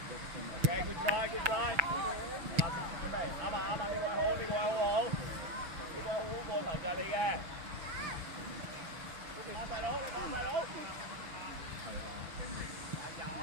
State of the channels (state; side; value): late; left; 6.6 ms